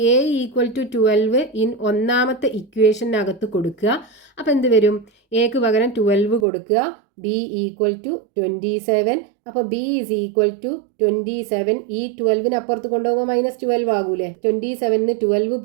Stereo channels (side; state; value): left; drops out; at 6.5 s